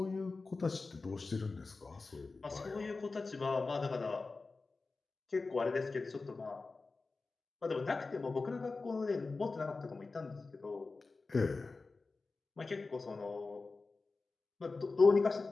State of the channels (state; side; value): quieter; right; 3.8 dB